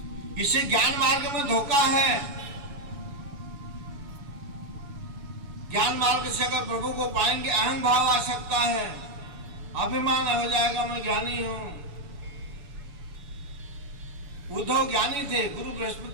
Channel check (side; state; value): left; late; 7.0 ms